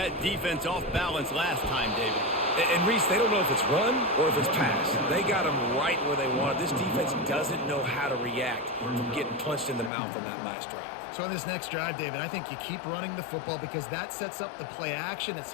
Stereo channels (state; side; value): drops out; right; at 9.9 s